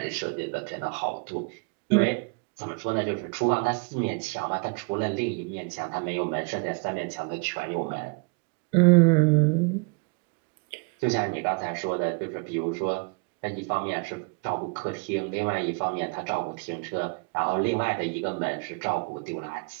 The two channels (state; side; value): quieter; left; 32.6 dB